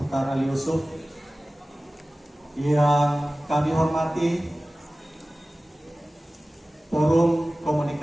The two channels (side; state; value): both; normal; correlation 0.97